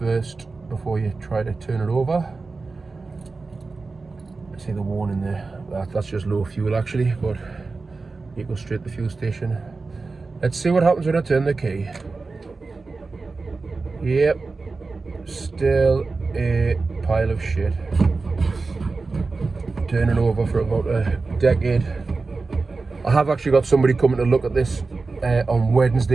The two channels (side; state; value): left; quieter; 3.9 dB